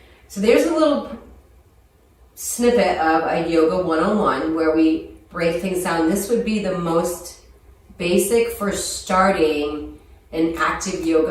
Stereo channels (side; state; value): both; identical; correlation 1.00